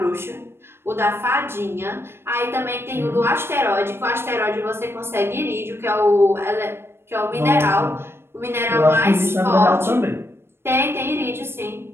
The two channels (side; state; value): left; late; 0.12 ms